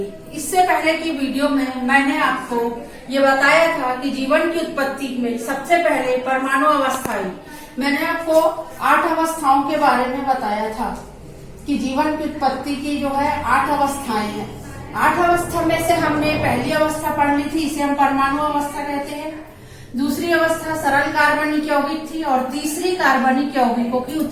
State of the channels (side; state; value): both; identical; correlation 1.00